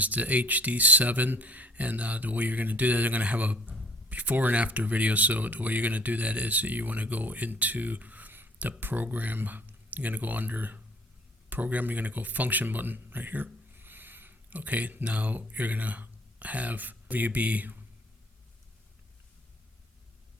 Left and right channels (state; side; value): normal; both; correlation 0.56